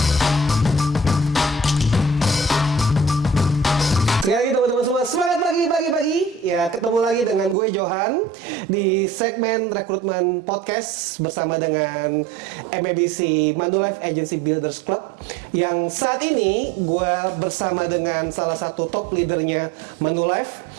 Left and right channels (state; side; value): drops out; left; at 7.6 s